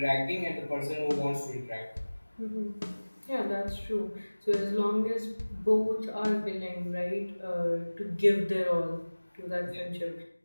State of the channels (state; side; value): inverted; both; correlation -1.00